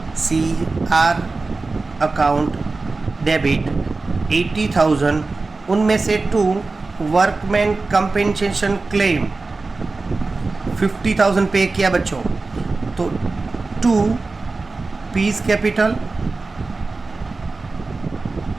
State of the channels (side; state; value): left; quieter; 3.7 dB